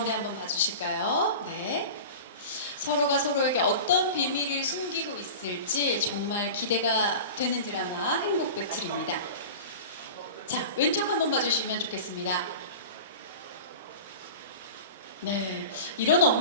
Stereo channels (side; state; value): both; inverted; correlation -0.33